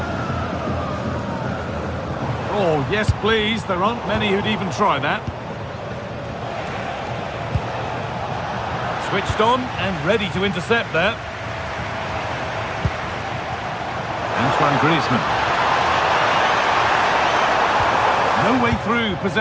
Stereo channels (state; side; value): identical; both; correlation 1.00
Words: Oh, yes, please. There aren't many who'd even try that. Switched on and ready to intercept that. Antoine Griezmann. No way through.